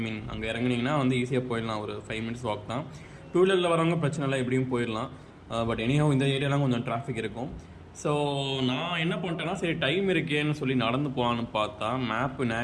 இறங்குனீங்கன்னா வந்து ஈஸியாக போயிடலாம். ஒரு 5 மினிட்ஸ் வாக் தான். 2 வீலரில் வரவங்க பிரச்சனை இல்லை, எப்படியும் போயிடலாம். பட் எனிஹவ் இந்த ஏரியாலாம் கொஞ்சம் டிராஃபிக் இருக்கும். ஸோ நான் என்ன பண்ணிட்டேன்னா, சரி டைம் இருக்கேன்னு சொல்லி நடந்து போகலான்னு பார்த்தா மேப்பு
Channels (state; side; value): identical; both; correlation 1.00